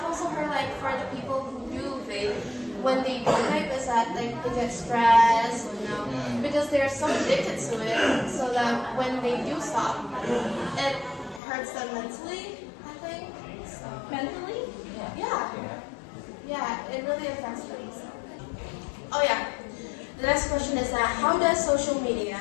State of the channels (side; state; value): right; drops out; at 11.4 s